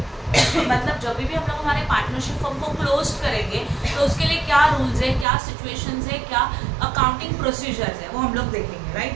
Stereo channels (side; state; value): left; drops out; at 5.2 s